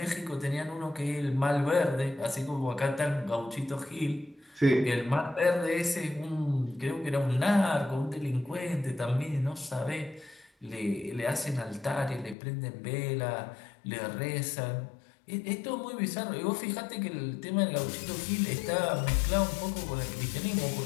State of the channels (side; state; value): right; drops out; at 12.4 s